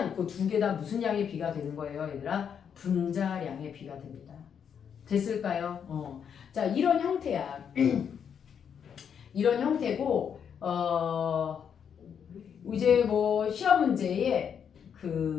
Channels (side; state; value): right; quieter; 7.7 dB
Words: 그 두 개 다 무슨 양의 비가 되는 거예요, 얘들아? 분자량의 비가 됩니다. 됐을까요? 자, 이런 형태야. 이런 형태고, 이제 뭐 시험 문제에